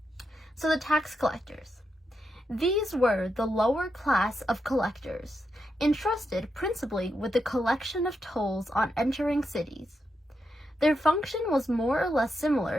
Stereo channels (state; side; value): normal; both; correlation 0.84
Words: So the tax collectors. These were the lower class of collectors, entrusted principally with the collection of tolls on entering cities. Their function was more or less